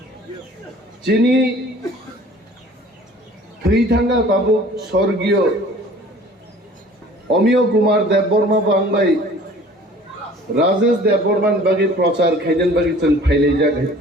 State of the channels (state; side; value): normal; both; correlation 0.49